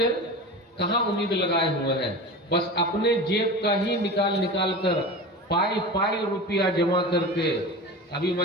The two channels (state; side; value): normal; both; correlation 0.30